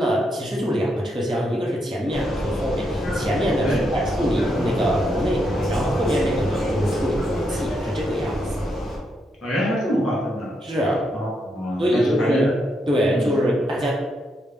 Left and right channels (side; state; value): both; normal; correlation 0.79